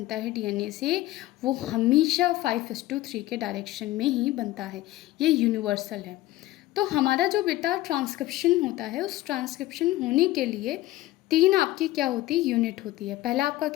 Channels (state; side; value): quieter; right; 16.6 dB